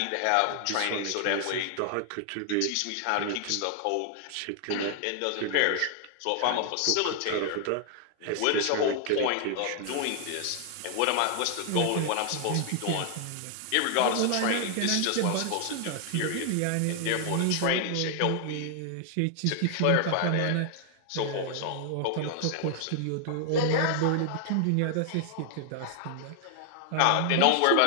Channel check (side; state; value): both; different; correlation 0.00